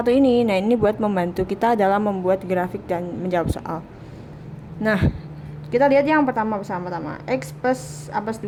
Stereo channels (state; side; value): identical; both; correlation 1.00